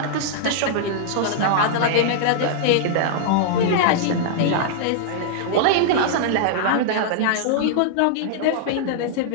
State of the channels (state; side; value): different; both; correlation -0.01